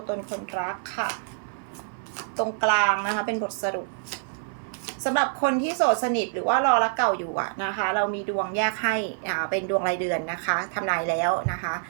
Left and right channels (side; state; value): left; silent; digital silence